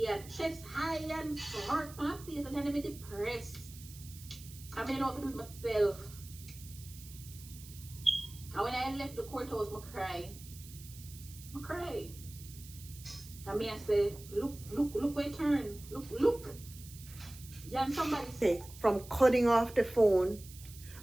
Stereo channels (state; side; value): noise; right; hiss, 17 dB below the sound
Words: and chest high and smirk on my face, and then I'm depressed. I mean, I know what to do with myself. And when I left the courthouse, I cry. I cry. I mean, I say, look where it turn. Look. Yeah, and somebody say, from cutting off the phone,